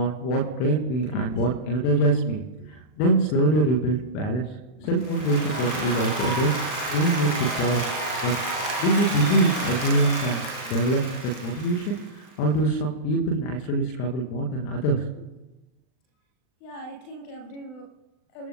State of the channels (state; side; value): late; right; 39 ms